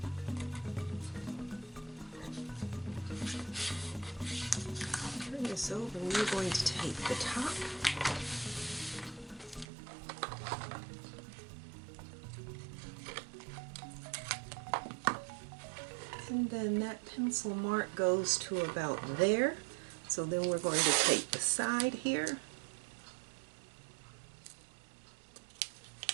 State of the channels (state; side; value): drops out; left; at 9.7 s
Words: Turn this over, and we're going to tape the top. And then that pencil mark goes to about there. So then we're going to tape the side here.